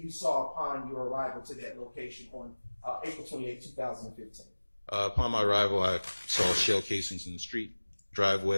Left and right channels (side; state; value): both; inverted; correlation -1.00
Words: you saw upon your arrival to that location on April 28, 2015? Upon my arrival, I saw shell casings in the street,